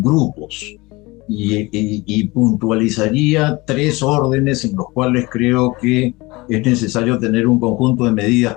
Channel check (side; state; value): right; quieter; 22.9 dB